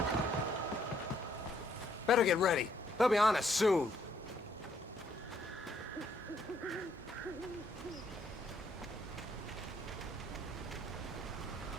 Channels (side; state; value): both; normal; correlation 0.70